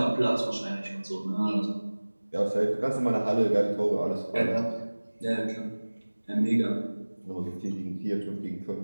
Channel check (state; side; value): inverted; both; correlation -1.00